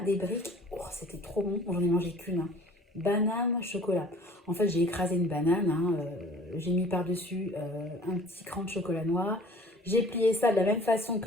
des briques. Oh, c'était trop bon. J'en ai mangé qu'une. Hein. Banane, chocolat. En fait, j'ai écrasé une banane. Hein, j'ai mis par-dessus un petit cran de chocolat noir. J'ai plié ça de la même façon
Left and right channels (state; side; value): normal; both; correlation 0.50